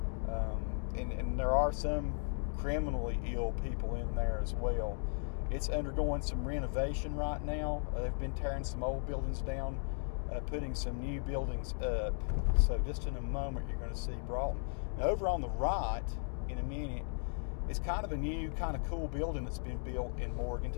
and there are some criminally ill people in there as well. It's undergoing some renovation right now. They've been tearing some old buildings down, putting some new buildings up. So just in a moment you're going to see Broughton. Now over on the right, in a minute, it's kind of a new, kind of cool building that's been built in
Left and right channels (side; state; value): right; silent; 54 dB below the other